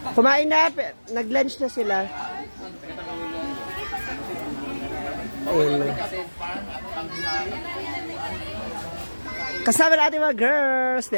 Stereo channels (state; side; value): inverted; both; correlation -1.00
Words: Kumain na, nag-lunch na sila. Ayun. Kasama natin mga girls.